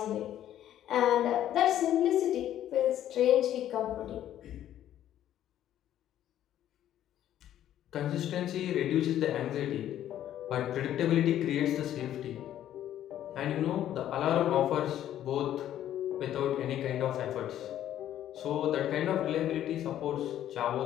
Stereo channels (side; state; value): right; quieter; 11.7 dB